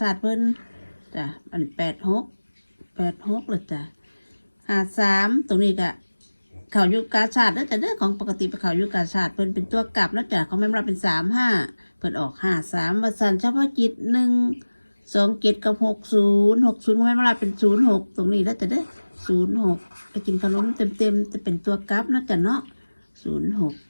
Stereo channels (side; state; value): both; inverted; correlation -1.00